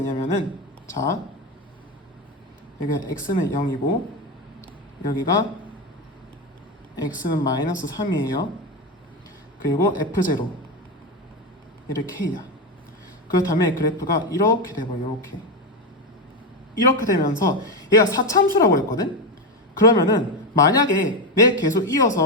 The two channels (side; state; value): both; normal; correlation 0.12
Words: 자 여기 x는 0이고 여기가 x는 마이너스 3이에요. 그리고 f0 얘를 k야. 그렇다면 그래프가 이렇게 돼버려. 이렇게 되면서 얘가 4참수라고 했거든. 그러면은 만약에 내 계속